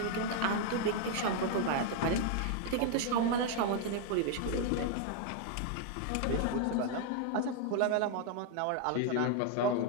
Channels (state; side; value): different; both; correlation 0.00